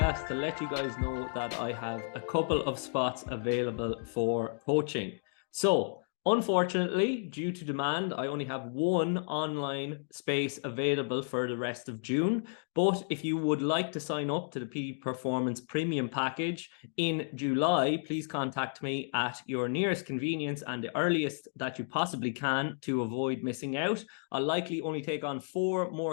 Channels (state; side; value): silent; right; digital silence